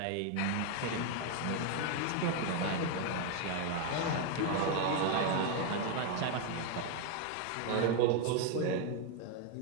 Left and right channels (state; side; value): different; both; correlation 0.01